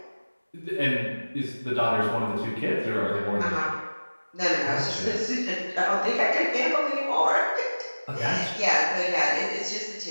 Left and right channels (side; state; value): both; inverted; correlation -1.00